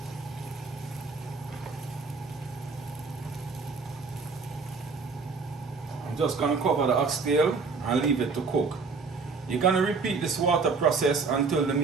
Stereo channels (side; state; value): left; quieter; 4.6 dB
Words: I'm just gonna cover the oxtail and leave it to cook. You're gonna repeat this water process until the